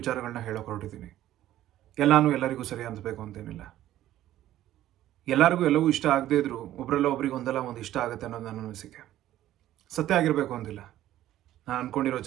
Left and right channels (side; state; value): left; quieter; 13.4 dB